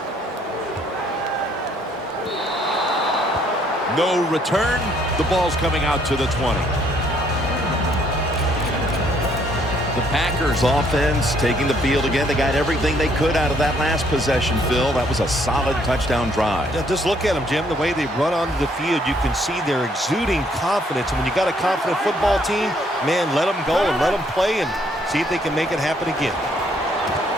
No return. The ball's coming out to the 20. The Packers offense taking the field again. They got everything they could out of that last possession, Phil. That was a solid touchdown drive. Yeah, just look at them, Jim. The way they run onto the field, you can see they're exuding confidence. And when you got a confident football team, man, let them go and let them play and see if they can make it happen again.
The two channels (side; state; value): both; normal; correlation 0.67